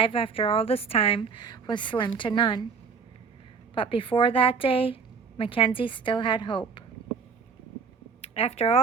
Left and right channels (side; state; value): left; quieter; 5.6 dB